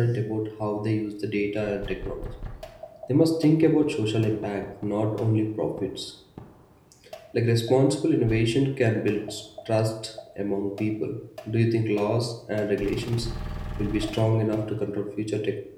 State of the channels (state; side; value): identical; both; correlation 1.00